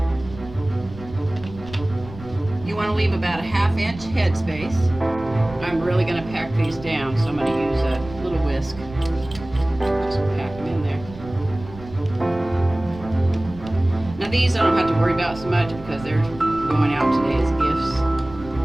You want to leave about a 1/2 inch headspace. I'm really going to pack these down, so I'm going to use a little whisk. Just pack them in there. Now these I don't have to worry about so much because they're going out today as gifts.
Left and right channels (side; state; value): right; noise; rumble, 16 dB below the sound